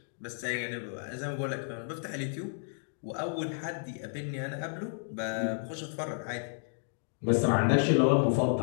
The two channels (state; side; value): silent; right; digital silence